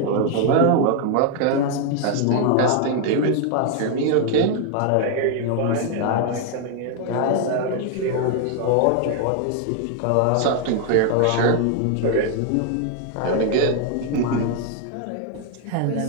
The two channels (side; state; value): both; different; correlation 0.00